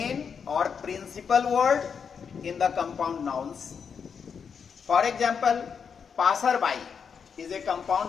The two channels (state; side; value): quieter; right; 6.5 dB